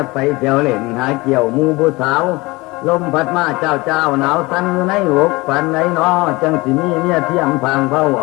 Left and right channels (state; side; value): quieter; right; 22.7 dB